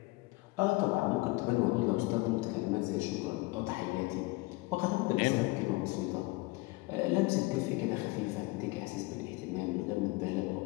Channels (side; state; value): right; quieter; 22.8 dB